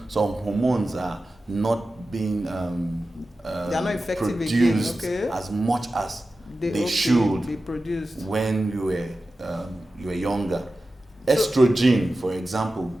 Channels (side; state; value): both; normal; correlation 0.94